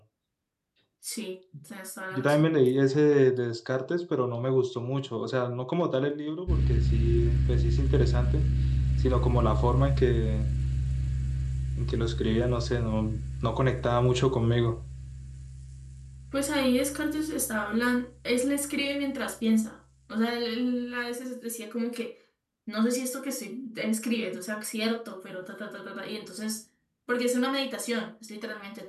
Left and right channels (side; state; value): both; identical; correlation 1.00